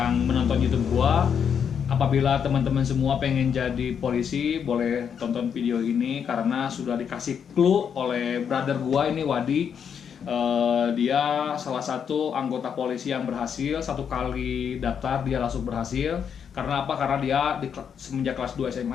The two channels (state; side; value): quieter; right; 7.5 dB